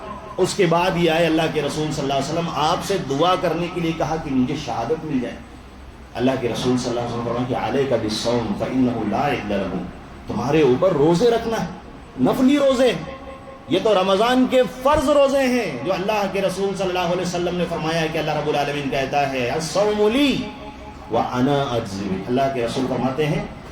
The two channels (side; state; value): both; identical; correlation 1.00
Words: اس کے بعد یہ آئے اللہ کے رسول صلی اللہ علیہ وسلم آپ سے دعا کرنے کے لیے کہا کہ مجھے شہادت مل جائے۔ اللہ کے رسول صلی اللہ علیہ وسلم فرمایا کہ علیک بالصوم فإنہ لا عدل لہ، تمہارے اوپر روزے رکھنا ہے، نفلی روزے، یہ تو رمضان کے فرض روزے ہیں جو اللہ کے رسول صلی اللہ علیہ وسلم نے فرمایا کہ اللہ رب العالمین کہتا ہے الصوم لی وانا اجزی بہ۔ اللہ کے رسول فرماتے ہیں